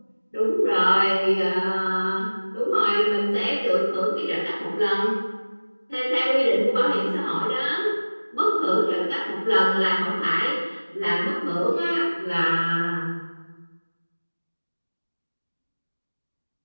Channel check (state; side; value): inverted; both; correlation -1.00